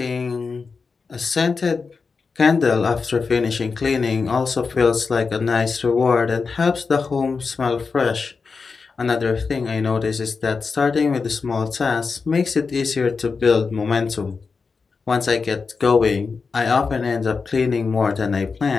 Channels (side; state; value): right; quieter; 4.8 dB